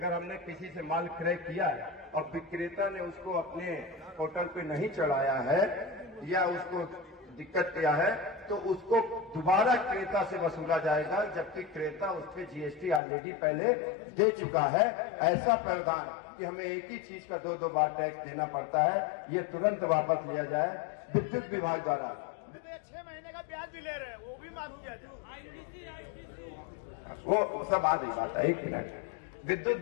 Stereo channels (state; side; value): drops out; right; at 13.0 s